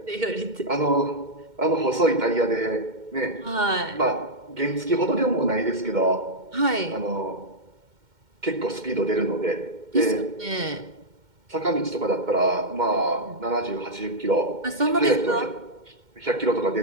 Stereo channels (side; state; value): left; late; 2.1 ms